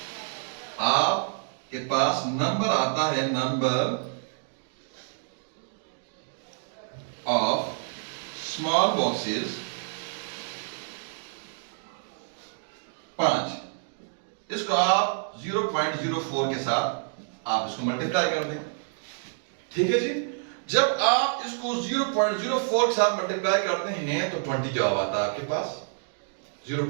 आपके पास नंबर आता है, नंबर ऑफ स्मॉल बॉक्सेस 5। इसको आप 0.04 के साथ आप इसको मल्टीप्लाई कर दें, ठीक है जी। जब आप इसको 0.04 के साथ मल्टीप्लाई करते हैं तो 20 जवाब आता है आपके पास,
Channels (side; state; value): left; silent; digital silence